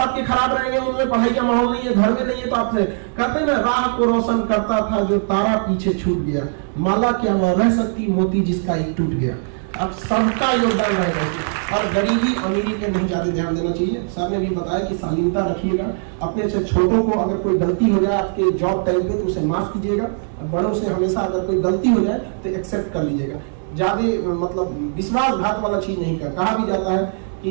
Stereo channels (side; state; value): left; silent; 66 dB below the other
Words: खराब रहेंगे, उनमें पढ़ाई का माहौल नहीं है, घर में नहीं है, तो आपसे कहते हैं ना, राह को रोशन करता था जो तारा पीछे छूट गया, माला क्या वह रह सकती मोती जिसका एक टूट गया। अब सबका योगदान रहेगा और गरीबी अमीरी पे नहीं ज्यादा ध्यान देना चाहिए। सर ने भी बताया कि शालीनता रखिएगा, अपने से छोटों को अगर कोई गलती हो जाए आपके जॉब टाइम पे तो उसे माफ कीजिएगा, बड़ों से हमेशा अगर कोई गलती हो जाए तो एक्सेप्ट कर लीजिएगा। ज्यादा मतलब विश्वासघात वाला चीज नहीं कर। कहा भी जाता है